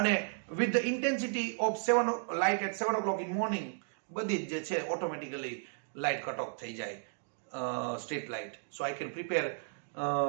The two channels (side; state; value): left; silent; digital silence